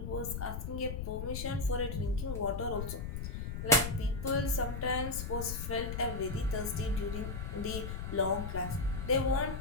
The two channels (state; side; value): noise; left; rumble, 4 dB below the sound